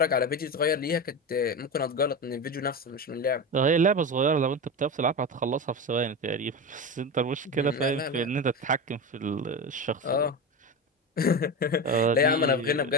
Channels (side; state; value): both; normal; correlation 0.21